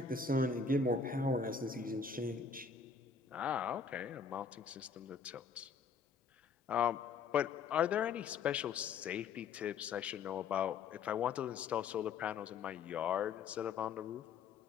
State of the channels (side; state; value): right; quieter; 5.5 dB